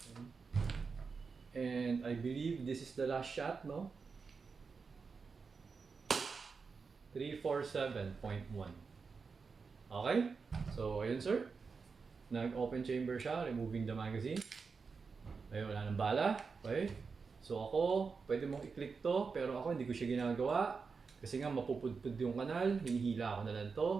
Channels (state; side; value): quieter; left; 5.0 dB